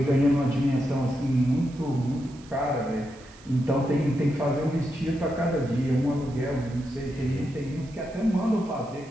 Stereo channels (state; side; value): noise; right; hiss, 24 dB below the sound